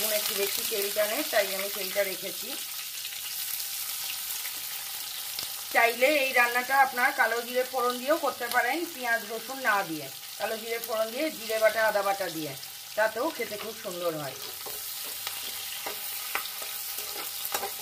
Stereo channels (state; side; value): identical; both; correlation 1.00